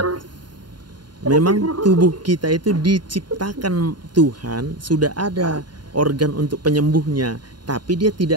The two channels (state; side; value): late; left; 0.71 ms